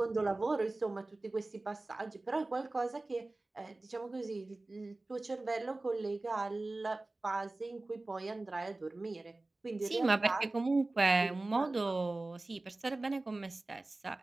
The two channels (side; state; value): left; quieter; 3.0 dB